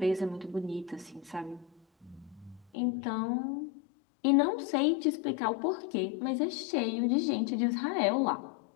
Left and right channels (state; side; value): drops out; right; at 2.7 s